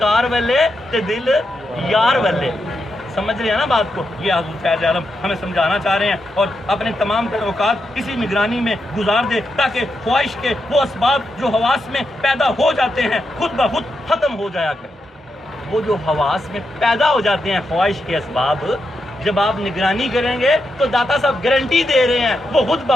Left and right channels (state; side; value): normal; both; correlation 0.85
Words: والے تے دل یار والے. سمجھ رہے ہیں نا بات کو؟ یہ حضور فیض عالم ہمیں سمجھانا چاہ رہے ہیں، اور اپنے تمام تر اوقات اسی نگرانی میں گزار دے تاکہ خواہش کے وہ اسباب جو حواس میں پیدا ہو جاتے ہیں خود بخود ختم ہو جایا کریں۔ وہ جو حواس میں پیدا ہو جاتے ہیں خواہش کے اسباب، جب آپ نگرانی کریں گے تو داتا صاحب گارنٹی دے رہے ہیں وہ خود